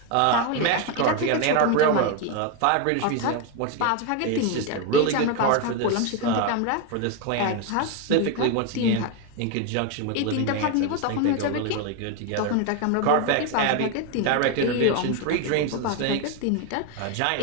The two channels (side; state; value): both; different; correlation 0.02